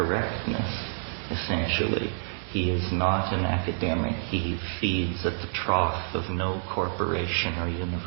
essentially. He is not an academic. He feeds at the trough of no corporation or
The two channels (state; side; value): silent; left; digital silence